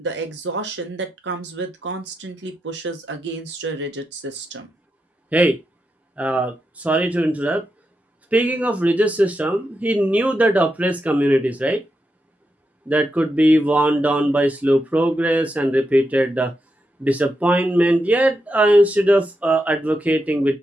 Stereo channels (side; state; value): both; normal; correlation 0.86